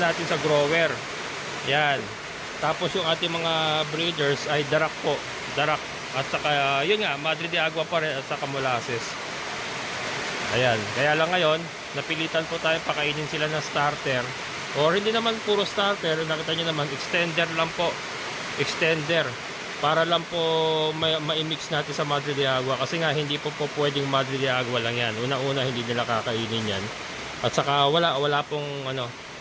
natin sa grower. Yan. Tapos yung ating mga breeders ay darak po, darak. At saka yun nga, Madre de Agua pa rin at saka molasses. Ayan, kaya lang ngayon napilitan po tayo pakainin sila ng starter, or hindi naman puro starter, nakita nyo naman extender lang po, extender, para lang po ma-mix natin sa Madre de Agua, kasi nga hindi po pwedeng Madre de Agua lang yan. Una-una hindi nila kakainin yan, at saka wala pong ano,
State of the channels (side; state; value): both; identical; correlation 1.00